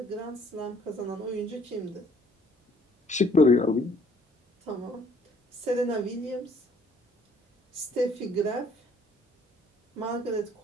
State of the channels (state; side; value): normal; both; correlation 0.61